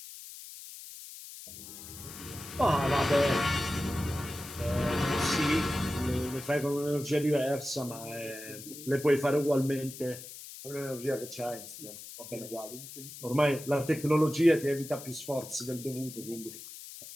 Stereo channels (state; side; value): noise; left; hiss, 13 dB below the sound